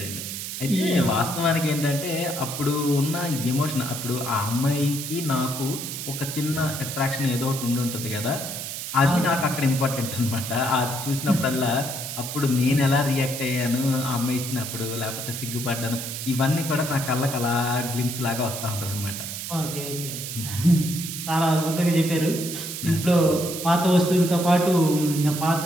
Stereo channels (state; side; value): noise; right; hiss, 6 dB below the sound